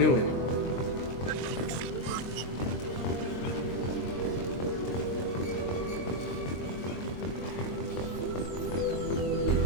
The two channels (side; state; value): right; late; 23 ms